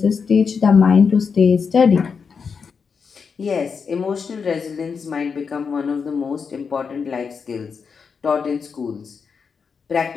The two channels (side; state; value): right; quieter; 5.8 dB